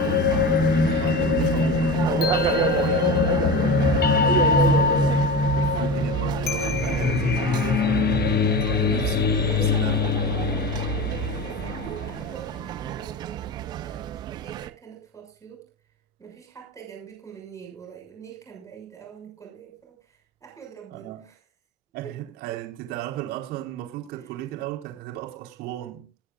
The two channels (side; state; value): both; normal; correlation 0.27